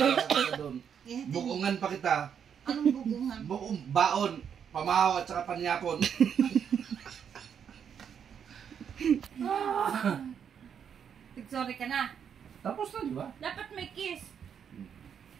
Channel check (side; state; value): left; quieter; 7.9 dB